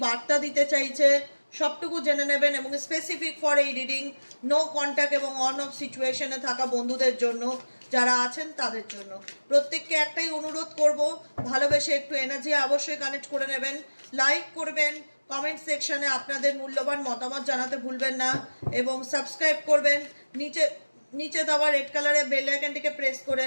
বার্তা দিতে চাইছে, সবটুকু জেনে নেবেন। এবং স্পেসিফিক ফর এই রিডিং, নো কন্ট্যাক্ট এবং অন অফ সিচুয়েশনে থাকা বন্ধুদের জন্য, যারা আছেন তাদের জন্য। প্রত্যেককে একটাই অনুরোধ করব, ভালোবেসে একটু এনার্জি অবশ্যই কানেক্ট করে নেবেন, লাইক করবেন, কমেন্ট সেকশনে আপনাদের মূল্যবান মতামত জানাতে ভুলবেন না, এবং সাবস্ক্রাইব করবেন নিচে নিচে দেওয়া রেড কালারের বেল আইকনটিকে প্রেস করে,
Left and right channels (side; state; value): both; inverted; correlation -1.00